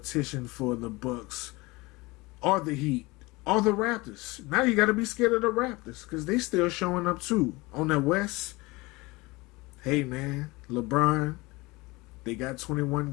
for the Bucks or the Heat or the Raptors. Now you got to be scared of the Raptors because they still showing up too. On the West, hey, man, LeBron, they got 21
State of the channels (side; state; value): right; quieter; 23.1 dB